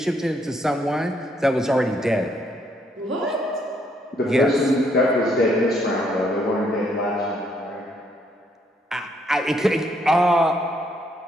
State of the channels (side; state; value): both; normal; correlation 0.71